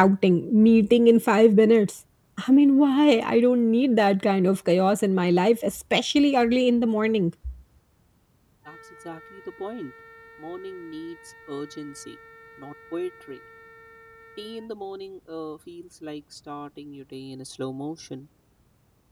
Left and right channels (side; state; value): both; identical; correlation 1.00